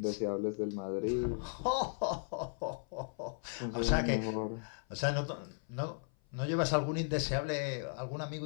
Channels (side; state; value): right; silent; 54 dB below the other